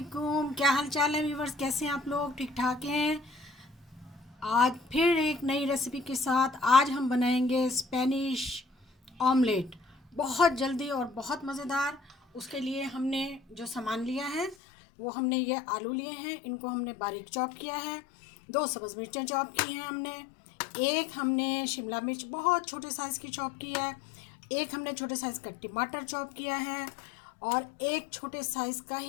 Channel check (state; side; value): drops out; right; at 14.6 s